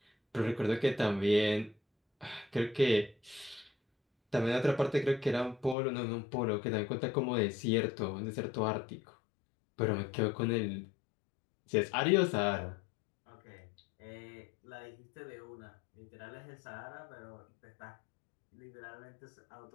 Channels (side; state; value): right; drops out; at 5.8 s